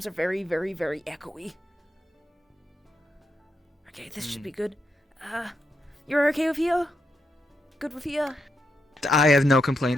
are very, very, very echoey. Okay, this should be good. You're okay with here? Good with here? I have no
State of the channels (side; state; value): both; normal; correlation 0.82